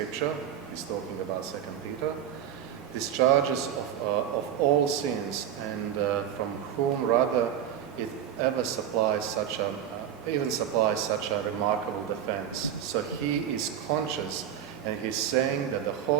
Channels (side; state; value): left; quieter; 9.6 dB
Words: he's talking about 2 Peter, discharges of all sins, and from whom rather it ever supplies such a remarkable defense. So he is conscious, and he's saying that the